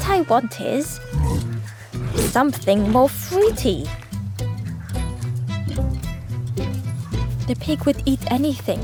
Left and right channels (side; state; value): both; identical; correlation 1.00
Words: I want is something more fruity. The pig would eat anything.